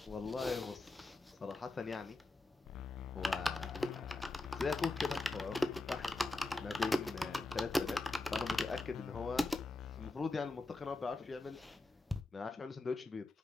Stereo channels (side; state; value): right; quieter; 3.1 dB